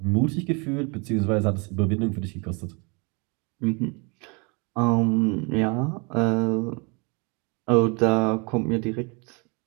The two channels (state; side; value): quieter; left; 31.5 dB